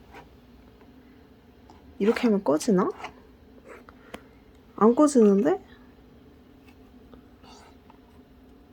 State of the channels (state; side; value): identical; both; correlation 1.00